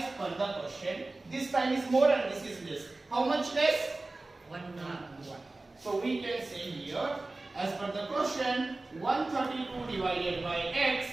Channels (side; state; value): left; quieter; 3.1 dB